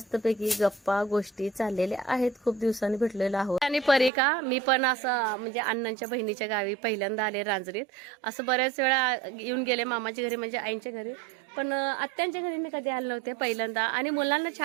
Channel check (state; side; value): drops out; left; at 4.1 s